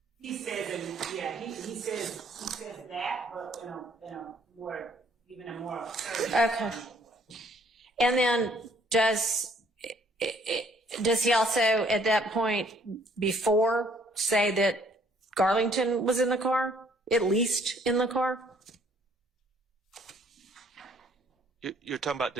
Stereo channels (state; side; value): normal; both; correlation 0.62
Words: He says, he says that, but in a more, even a more. Okay. And then does he also at that point before say that Garlington was in the car, at least in the car? You're talking about